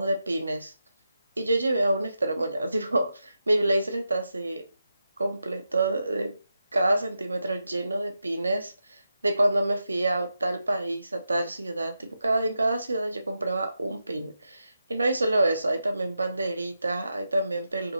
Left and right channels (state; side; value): inverted; both; correlation -0.88